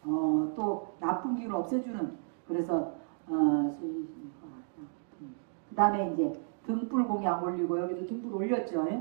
또 나쁜 기운을 없애주는, 그래서 그 다음에 이제 등불 공양 올리고, 여기도 등불 올렸죠.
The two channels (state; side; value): silent; left; digital silence